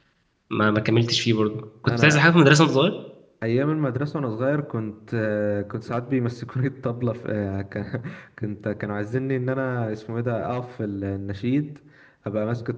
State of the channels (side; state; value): both; identical; correlation 1.00